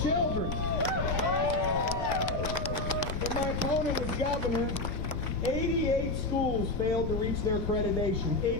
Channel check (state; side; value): noise; left; rumble, 5 dB below the sound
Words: When my opponent was governor, 88 schools failed to reach their accreditation.